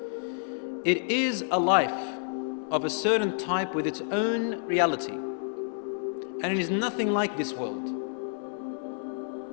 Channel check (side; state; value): right; silent; digital silence